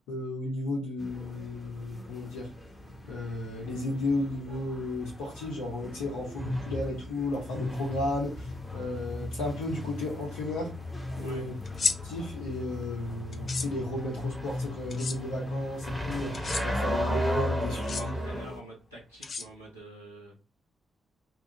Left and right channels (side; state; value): both; normal; correlation 0.76